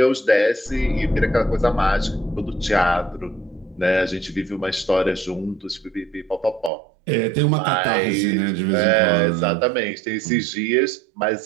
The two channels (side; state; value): left; drops out; at 6.7 s